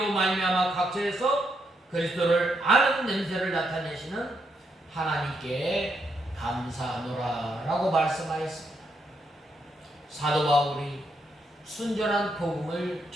말미암아 각처에서 그리스도를 아는 냄새를 나타내시는 하나님께 감사하노라 라고 말씀하였습니다. 사도 바울이 순전한 복음을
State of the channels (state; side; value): normal; both; correlation 0.79